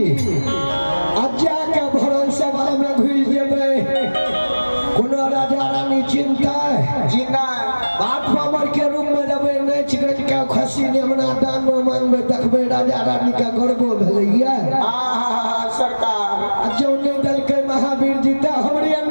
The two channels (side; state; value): both; inverted; correlation -1.00